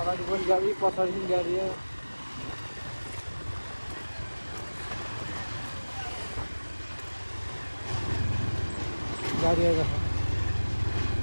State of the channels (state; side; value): inverted; both; correlation -1.00